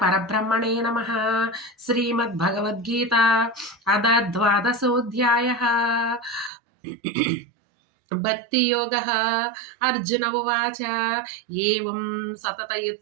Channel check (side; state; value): left; drops out; at 6.5 s